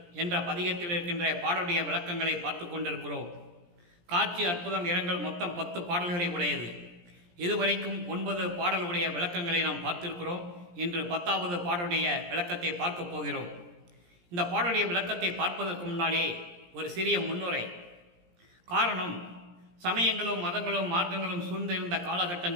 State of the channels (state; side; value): late; left; 17 ms